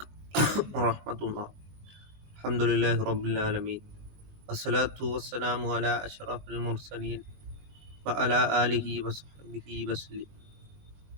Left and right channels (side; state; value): left; late; 20 ms